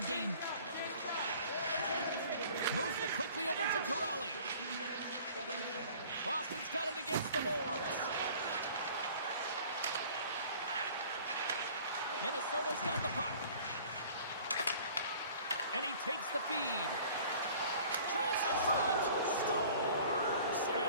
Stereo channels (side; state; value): both; inverted; correlation -0.49